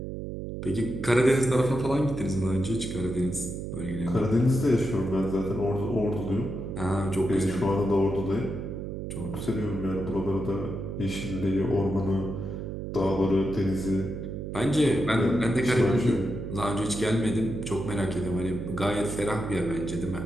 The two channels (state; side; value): noise; right; hum, 6 dB below the sound